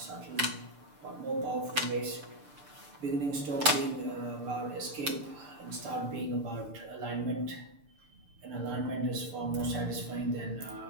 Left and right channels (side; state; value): left; late; 6.8 ms